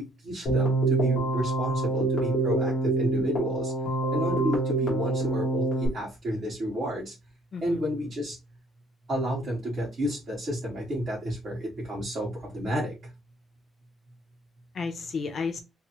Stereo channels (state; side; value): normal; both; correlation 0.60